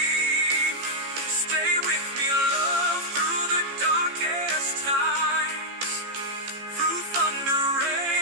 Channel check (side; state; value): left; late; 15 ms